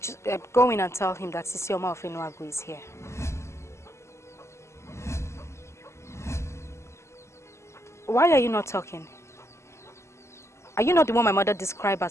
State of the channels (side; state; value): right; late; 0.13 ms